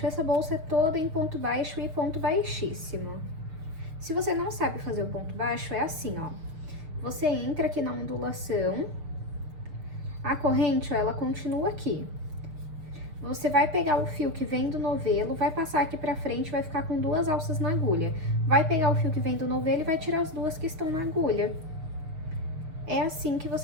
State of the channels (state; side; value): late; left; 6.5 ms